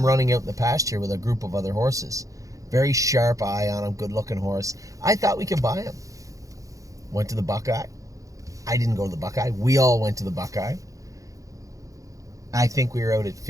running out in the pasture with a group of other horses. Very sharp eye on him, good-looking horse. I thought we could buy him. Went to the Buckeye. I didn't go to the Buckeye. We all went to the Buckeye. I think we were out at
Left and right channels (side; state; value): left; late; 0.16 ms